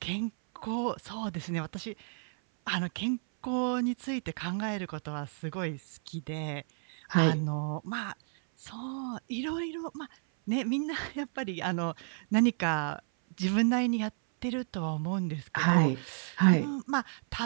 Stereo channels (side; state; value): left; silent; 57 dB below the other